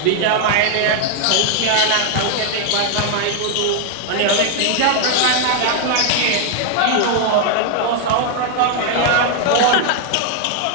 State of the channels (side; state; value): both; different; correlation 0.00